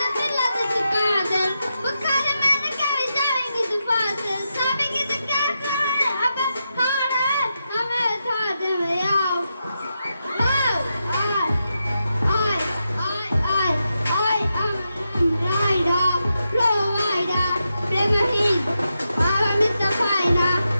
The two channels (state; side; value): inverted; both; correlation -0.87